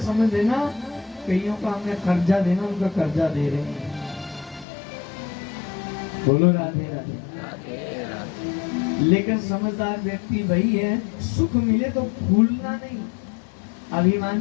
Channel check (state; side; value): drops out; right; at 4.7 s